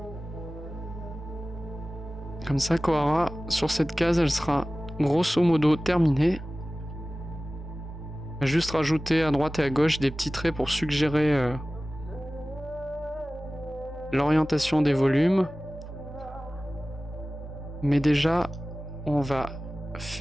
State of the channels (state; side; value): normal; both; correlation 0.97